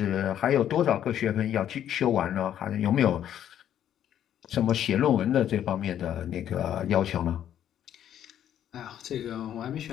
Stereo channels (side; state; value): right; quieter; 10.5 dB